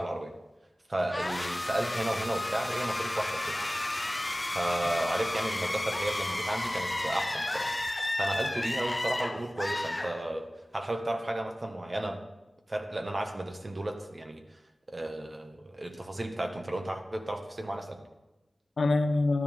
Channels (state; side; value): normal; both; correlation 0.97